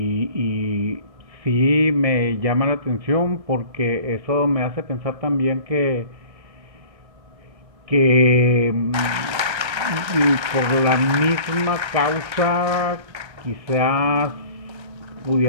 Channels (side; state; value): left; late; 1.3 ms